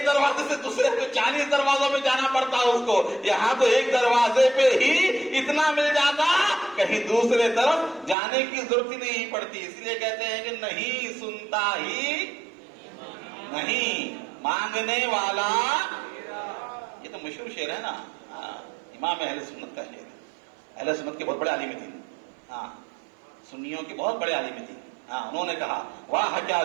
دروازے سے دوسرے پہ 40 دروازوں میں جانا پڑتا اس کو، یہاں تو ایک دروازے پہ ہی اتنا مل جاتا کہیں دوسرے طرف جانے کی ضرورت ہی نہیں پڑتی، اس لیے کہتے ہیں کہ نہیں سنتا ہی نہیں مانگنے والا، یہ تو مشہور شعر ہے نا، امام اہل سنت کا شعر ہے، اہل سنت کے بہت بڑے عالم تھے، ہاں سنیوں کے بہت بڑے عالم تھے، ہاں انہوں نے کہا واہ کیا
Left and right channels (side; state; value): left; drops out; at 8.2 s